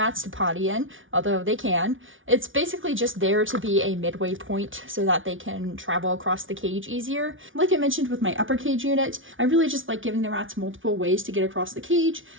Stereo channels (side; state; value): left; late; 0.57 ms